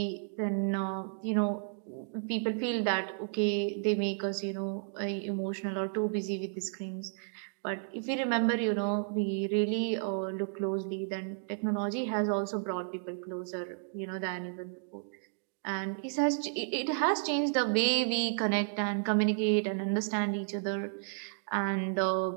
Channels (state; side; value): silent; left; digital silence